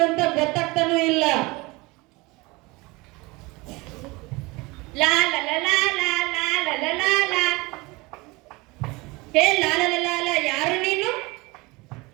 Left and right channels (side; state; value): left; quieter; 23.9 dB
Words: ಗೊತ್ತಾಗ್ತಾನೂ ಇಲ್ಲ. ಲಾ ಲಾ ಲಾ ಲಾ ಲಾ ಲಾ ಲಾ ಲಾ ಲಾ. ಹೇ ಲಾ ಲಾ ಲಾ ಲಾ, ಯಾರು ನೀನು?